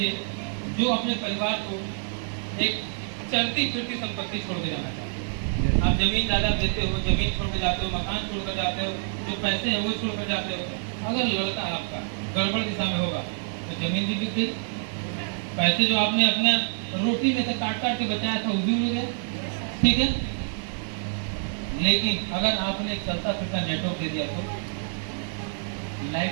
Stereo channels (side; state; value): left; silent; 60 dB below the other